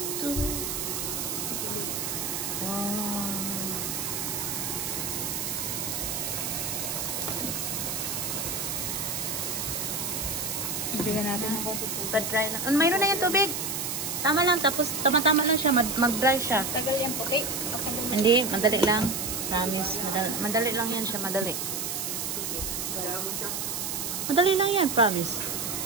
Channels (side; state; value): right; noise; hiss, 2 dB below the sound